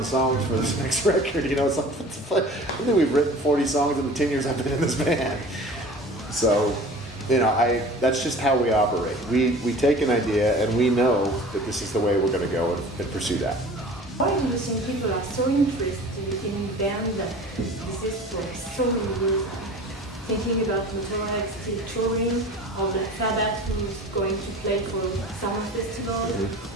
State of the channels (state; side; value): normal; both; correlation 0.42